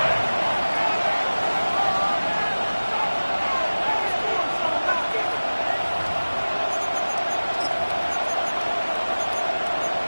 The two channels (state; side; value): inverted; both; correlation -1.00